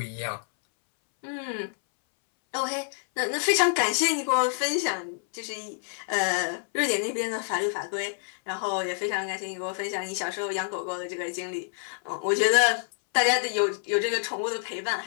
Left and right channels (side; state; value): right; silent; 60 dB below the other